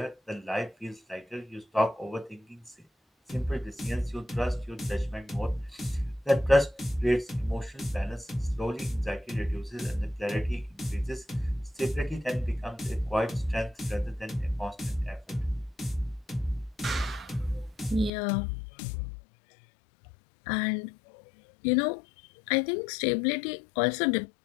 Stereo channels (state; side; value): drops out; right; at 18.1 s